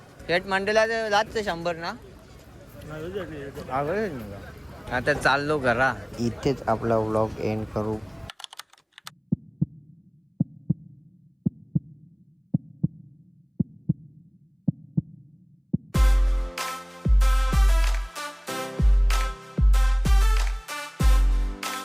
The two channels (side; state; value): both; identical; correlation 1.00